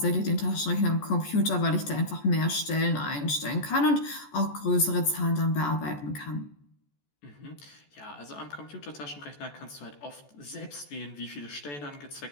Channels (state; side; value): late; right; 14 ms